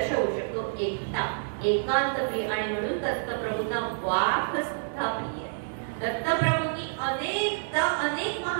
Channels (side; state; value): left; silent; 59 dB below the other